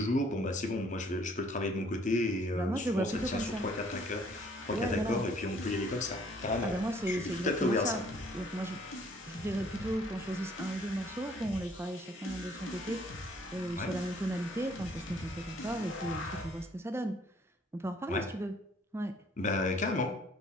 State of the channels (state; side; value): normal; both; correlation 0.60